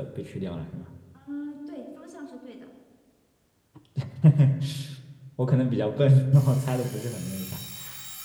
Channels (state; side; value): identical; both; correlation 1.00